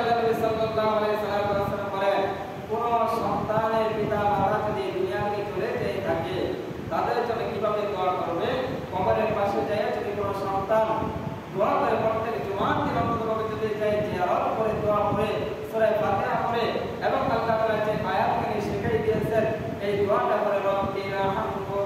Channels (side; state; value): both; identical; correlation 1.00